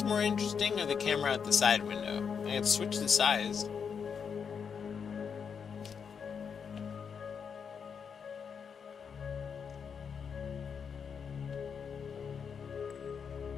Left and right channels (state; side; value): quieter; right; 6.6 dB